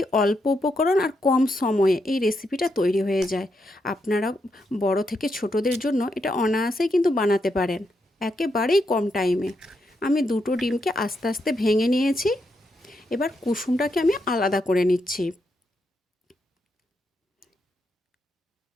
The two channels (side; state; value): both; normal; correlation 0.81